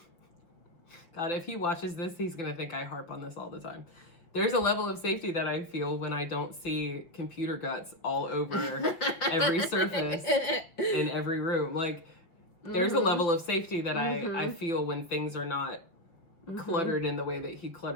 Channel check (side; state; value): right; late; 5.5 ms